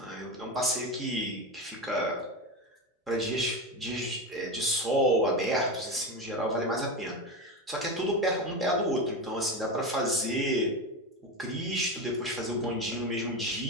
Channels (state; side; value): normal; both; correlation 0.19